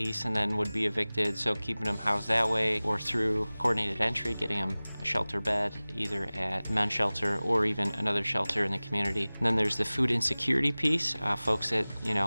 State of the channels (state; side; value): inverted; both; correlation -0.99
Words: and then would be evicted, so keeping them housed that way, or through coordinated entry, getting them a shelter bed, either at men's shelter or even another shelter in the community. And then there's the food insecurity piece, folks that